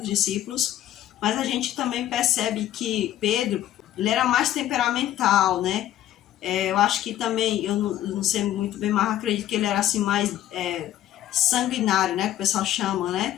discípulos, mas a gente também percebe que Pedro, ele era mais temperamental, eu acho que também, eu não sei muito bem, mas acredito que ele era assim mais sanguinário, que o pessoal chama,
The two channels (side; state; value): right; quieter; 12.6 dB